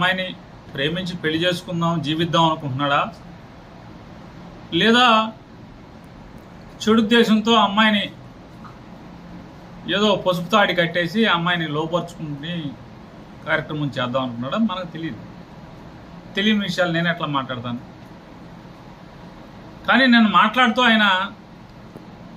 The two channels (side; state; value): both; identical; correlation 1.00